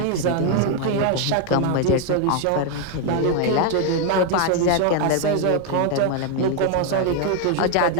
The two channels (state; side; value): different; both; correlation 0.01